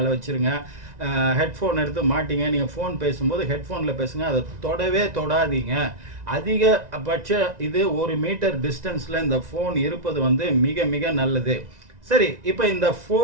வச்சுருங்க. ஹெட்ஃபோன் எடுத்து மாட்டிங்க. நீங்கள் ஃபோன் பேசும்போது ஹெட்ஃபோனில் பேசுங்க, அதை தொடாதீங்க. அதிகபட்ச இது 1 மீட்டர் டிஸ்டன்ஸில் இந்த ஃபோன் இருப்பது வந்து மிக மிக நல்லது. சரி, இப்போ இந்த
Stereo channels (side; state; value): left; late; 1.9 ms